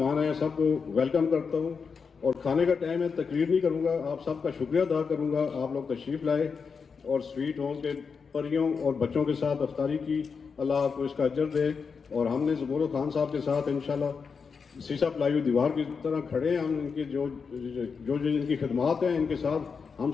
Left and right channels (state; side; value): quieter; right; 5.6 dB